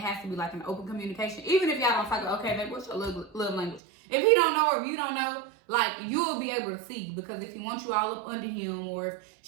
to be like an open communication. Even if y'all don't talk, okay, babe, what's your love language? If he don't know or if you don't know, like, you'll be able to see, because if he wants you all up under him, or if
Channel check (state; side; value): drops out; left; at 3.8 s